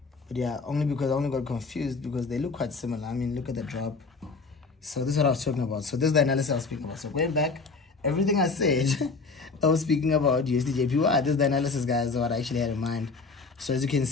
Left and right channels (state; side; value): quieter; right; 4.2 dB